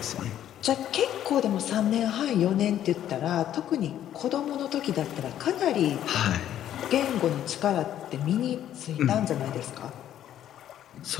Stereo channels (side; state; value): right; quieter; 11.2 dB